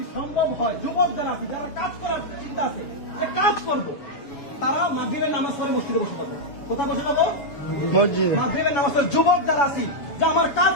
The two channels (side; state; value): right; late; 7.1 ms